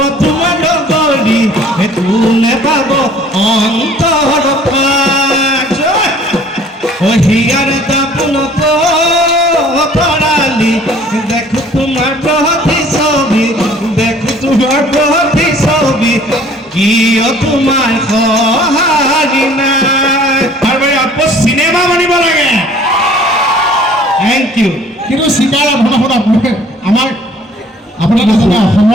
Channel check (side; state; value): both; normal; correlation 0.54